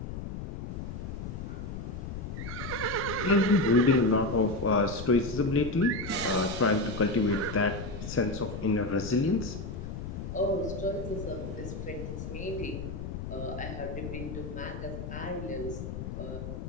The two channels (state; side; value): noise; left; rumble, 7 dB below the sound